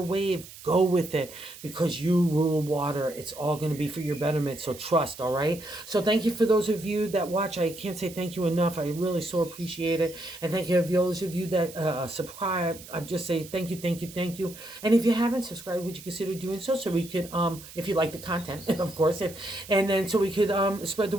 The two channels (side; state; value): right; noise; hiss, 17 dB below the sound